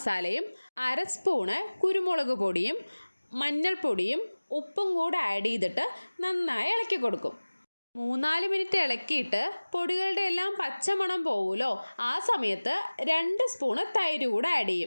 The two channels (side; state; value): both; inverted; correlation -1.00